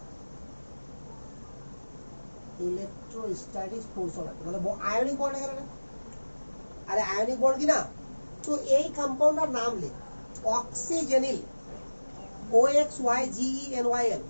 Electrostatics force of attraction মানে আয়নিক বন্ড এখানে না? আরে আয়নিক বন্ড কি না? তো এই কম্পাউন্ডটার নাম লিখ, অক্সিজেনিল, OXYGENYL,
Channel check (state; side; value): inverted; both; correlation -1.00